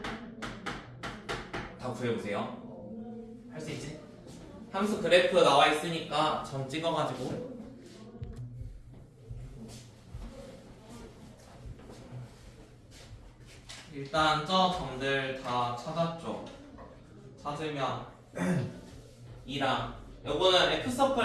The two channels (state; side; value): identical; both; correlation 1.00